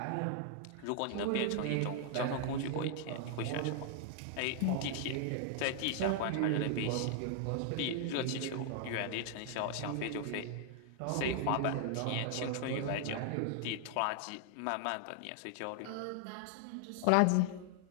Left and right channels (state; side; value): different; both; correlation 0.00